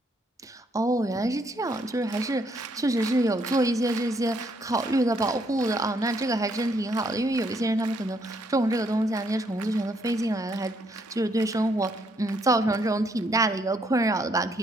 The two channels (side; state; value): both; normal; correlation 0.71